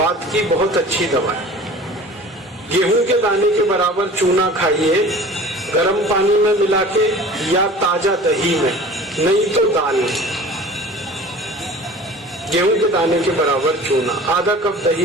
की बहुत अच्छी दवा है। गेहूं के दाने के बराबर चूना खाइए, गर्म पानी में मिला के या ताजा दही में, नहीं तो दाल में। गेहूं के दाने के बराबर चूना आधा कप दही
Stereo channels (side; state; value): both; normal; correlation 0.42